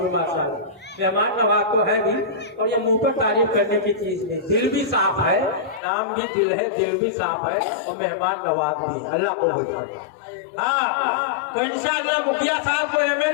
की माशाअल्लाह, मेहमान नवाज तो है भी, और ये मुंह पर तारीफ करने की चीज नहीं, दिल भी साफ है, नाम भी दिल है, दिल भी साफ है, और मेहमान नवाज भी। अल्लाह को बोलता हाँ, तो इंशाअल्लाह मुखिया साहब को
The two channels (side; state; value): right; drops out; at 5.8 s